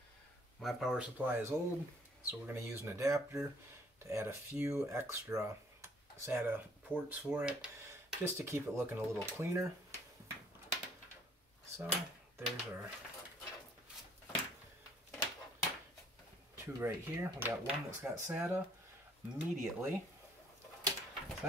My power supply is old, so we're going to use an adapter to add a few extra SATA ports for it, just to keep it looking a little cleaner. So there's our 2 right here. We got one that's got SATA immediately. So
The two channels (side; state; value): both; normal; correlation 0.61